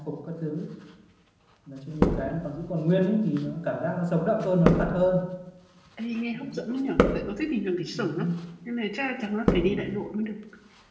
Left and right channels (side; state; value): both; identical; correlation 1.00